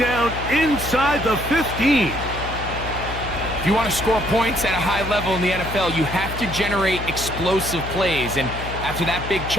inside the 15. If you want to score points at a high level in the NFL, you have to generate explosive plays. And after that big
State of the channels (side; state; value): left; noise; hum, 8 dB below the sound